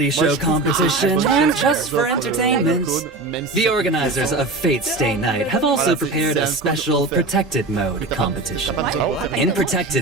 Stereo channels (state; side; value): quieter; left; 3.2 dB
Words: show competition, and just for entertainment, entertainment. The organizers of Fate Stay Night have also prepared a special Protected Mode competition. In